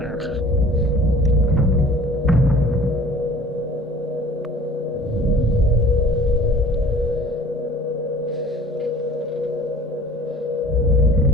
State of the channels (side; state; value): both; normal; correlation 0.48